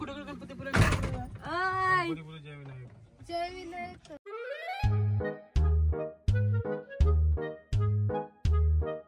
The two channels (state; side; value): identical; both; correlation 1.00